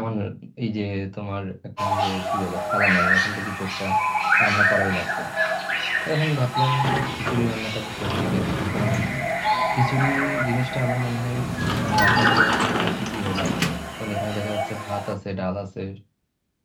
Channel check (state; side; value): identical; both; correlation 1.00